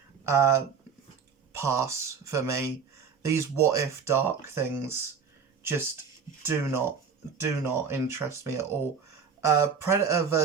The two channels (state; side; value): quieter; left; 6.2 dB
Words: pass for me. These What If Dark things just do not interest me at all. Predator